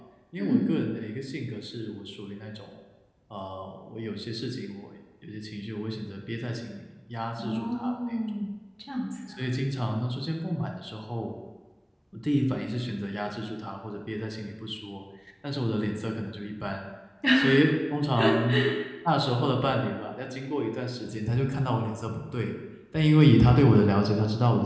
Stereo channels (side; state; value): both; identical; correlation 1.00